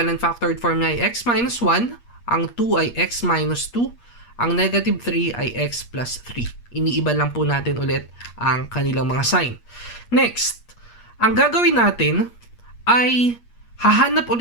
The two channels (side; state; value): right; late; 8.4 ms